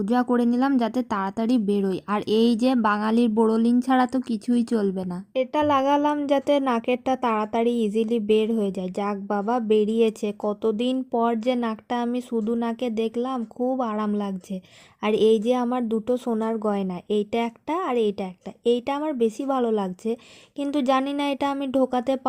করে নিলাম যাতে তাড়াতাড়ি বেরোয়। আর এই যে বাঙালির বোরোলিন ছাড়া তো কিছুই চলবে না। এটা লাগালাম যাতে নাকেরটা তাড়াতাড়ি ইজিলি বের হয়ে যায়। যাক বাবা, বেরিয়েছে। কতদিন পর যে নাকটা আমি শুধু নাকে দেখলাম, খুব আরাম লাগছে। আর এই যে আমার দুটো সোনার গয়না, এইটা একটা আর এইটা একটা, এইটা আমার বেশি ভালো লাগছে। কিন্তু জানি না এটা আমি ঢোকাতে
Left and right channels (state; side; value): identical; both; correlation 1.00